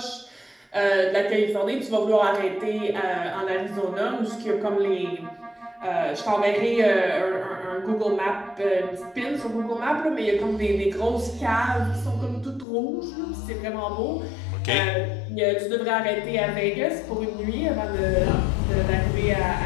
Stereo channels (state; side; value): drops out; right; at 12.7 s